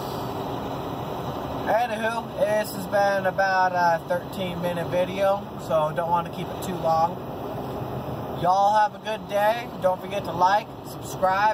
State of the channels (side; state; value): both; identical; correlation 1.00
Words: Anywho, this has been about a 13-minute video, so don't want to keep it too long. Y'all have a good day. Don't forget to like,